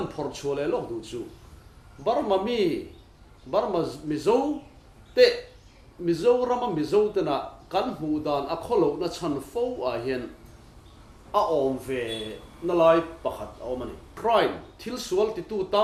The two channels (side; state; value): both; identical; correlation 1.00